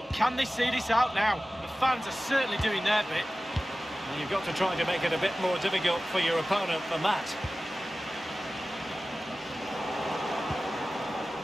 can they see this out now? The fans are certainly doing their bit. Well, you've got to try to make it a bit more difficult for your opponent than that.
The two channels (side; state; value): both; normal; correlation 0.96